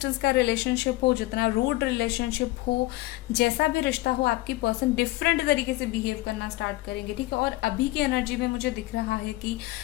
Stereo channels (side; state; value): right; quieter; 19.0 dB